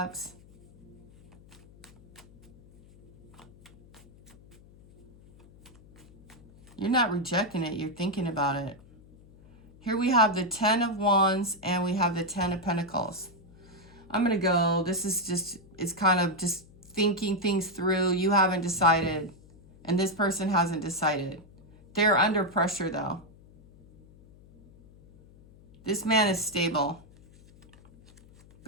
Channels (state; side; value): noise; left; hum, 24 dB below the sound